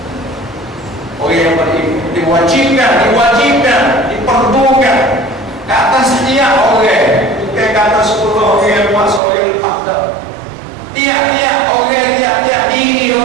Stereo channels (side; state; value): left; drops out; at 9.2 s